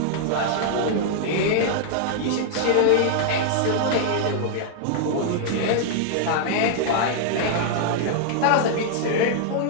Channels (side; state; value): both; different; correlation -0.01